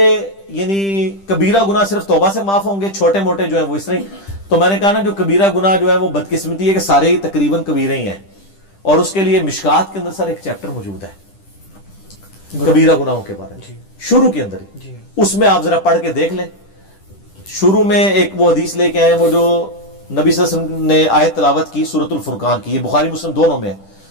یعنی کبیرہ گناہ صرف توبہ سے معاف ہوں گے, چھوٹے موٹے جو ہیں وہ اس طرح. تو میں نے کہا نا جو کبیرہ گناہ جو ہے وہ بدقسمتی ہے کہ سارے ہی تقریباً کبیرے ہی ہیں, اور اس کے لیے مشکات کے اندر سر ایک چیپٹر موجود ہے کبیرہ گناہوں کے بارے میں, شروع کے اندر ہی. اس میں آپ ذرا پڑھ کے دیکھ لیں. شروع میں ایک وہ حدیث لے کے آئے وہ جو نبی صلی اللہ علیہ وسلم نے آیت تلاوت کی سورۃ الفرقان کی, یہ بخاری مسلم دونوں میں ہے.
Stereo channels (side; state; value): right; late; 10 ms